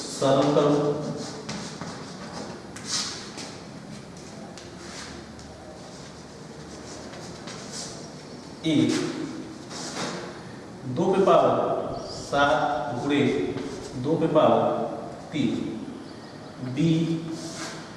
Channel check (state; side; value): identical; both; correlation 1.00